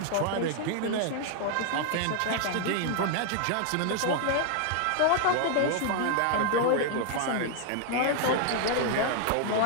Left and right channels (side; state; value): both; different; correlation 0.00